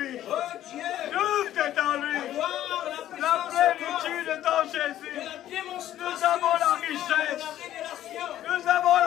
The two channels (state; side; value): quieter; right; 12.5 dB